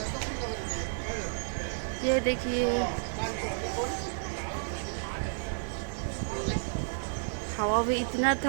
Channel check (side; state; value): left; silent; digital silence